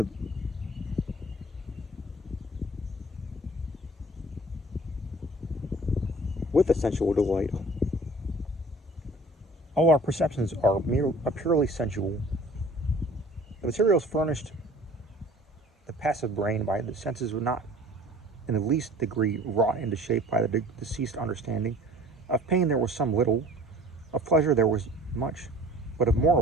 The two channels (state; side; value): normal; both; correlation 0.48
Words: a sensual delight. All our perceptions are purely sensual. The materials furnished the passive brain by the senses were not in the least degree wrought into shape by the deceased understanding. Of pain there was some little, of pleasure there was much, but of